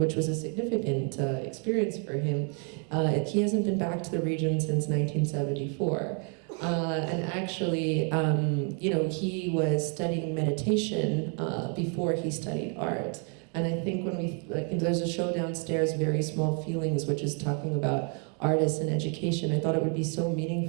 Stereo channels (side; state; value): left; quieter; 39.9 dB